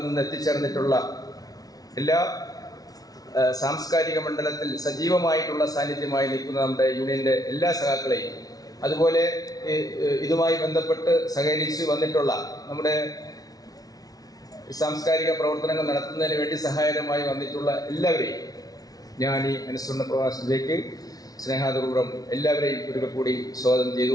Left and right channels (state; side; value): late; right; 0.18 ms